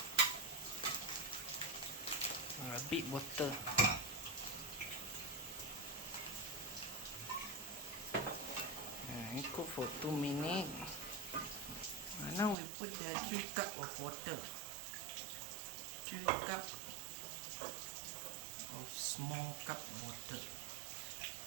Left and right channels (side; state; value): left; drops out; at 12.6 s